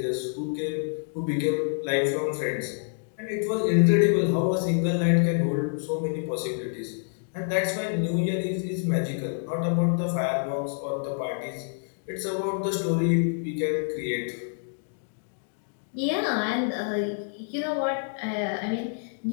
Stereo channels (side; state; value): right; silent; digital silence